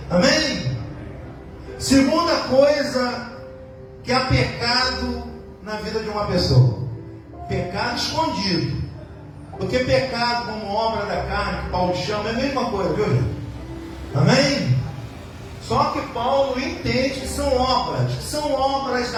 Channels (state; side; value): identical; both; correlation 1.00